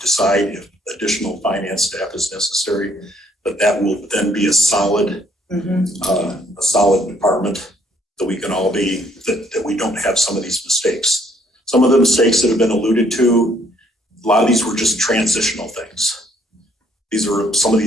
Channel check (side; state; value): both; normal; correlation 0.66